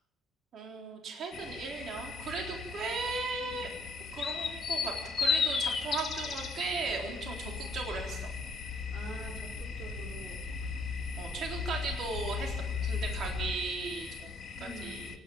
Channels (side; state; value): both; normal; correlation 0.64